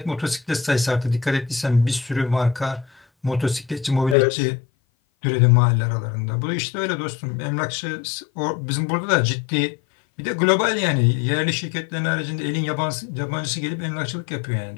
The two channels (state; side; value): drops out; right; at 4.2 s